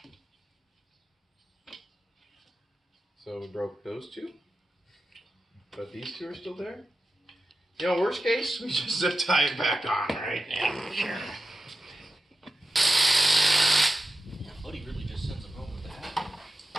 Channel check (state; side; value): normal; both; correlation 0.92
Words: So we broke those two, but these two are still there. Worst case, we just tie it back on, right? Yeah, Buddy really just sends them home with that.